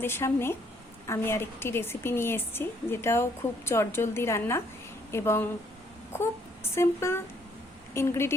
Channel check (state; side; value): normal; both; correlation 0.67